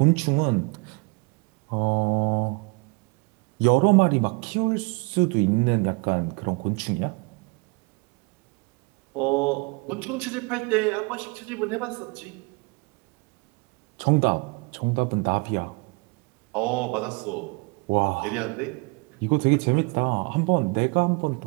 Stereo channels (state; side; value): quieter; left; 29.7 dB